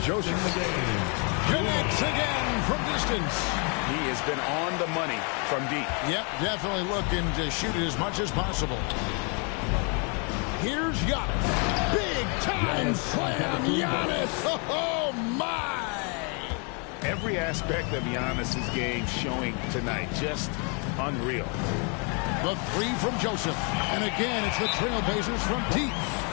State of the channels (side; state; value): right; quieter; 36.0 dB